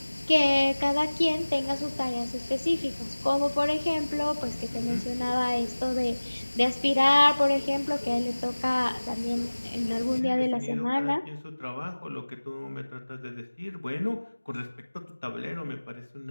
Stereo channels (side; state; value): both; inverted; correlation -1.00